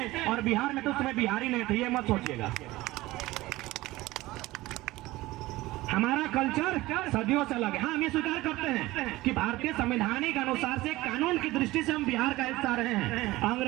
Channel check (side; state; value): left; quieter; 18.5 dB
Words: और बिहार में तो उस समय बिहारी नहीं थे, ये मत सोचिएगा। हमारा कल्चर सदियों से अलग है। हाँ, हम ये स्वीकार करते हैं कि भारतीय संवैधानिक अनुसार से कानून की दृष्टि से हम बिहार का हिस्सा रहे हैं,